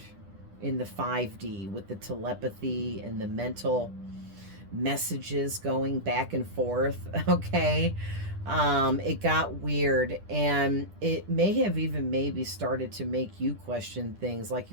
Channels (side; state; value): left; late; 10 ms